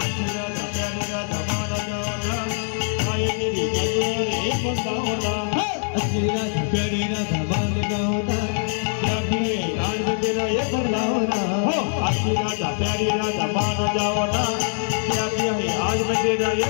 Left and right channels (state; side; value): silent; right; digital silence